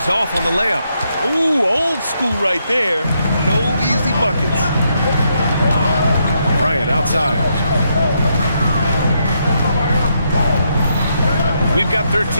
off on the layup. Ooh, old school right there. No easy buckets. Bryant outside. We've got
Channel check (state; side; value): inverted; both; correlation -0.78